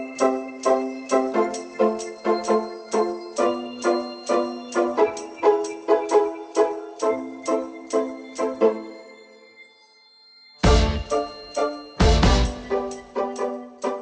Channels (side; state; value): both; identical; correlation 1.00